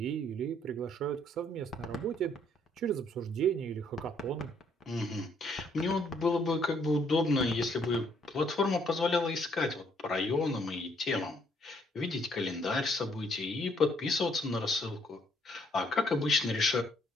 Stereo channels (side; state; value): both; normal; correlation 0.68